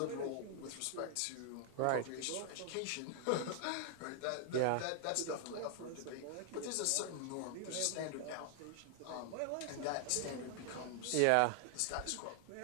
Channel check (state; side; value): different; both; correlation 0.00